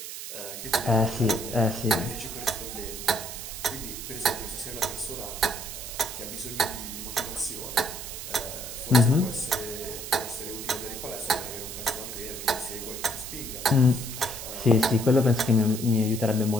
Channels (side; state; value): right; noise; hiss, 8 dB below the sound